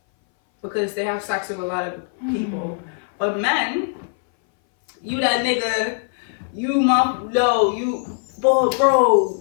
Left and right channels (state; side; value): silent; right; 60 dB below the other